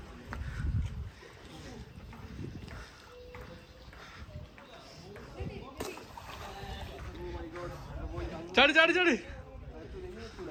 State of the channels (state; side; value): identical; both; correlation 1.00